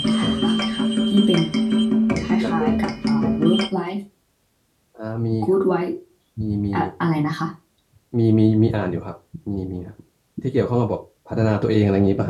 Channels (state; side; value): identical; both; correlation 1.00